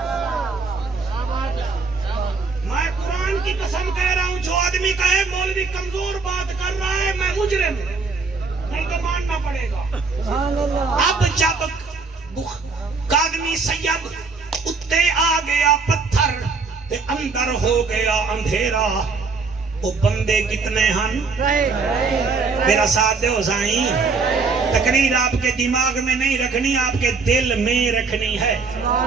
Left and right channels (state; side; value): quieter; left; 4.5 dB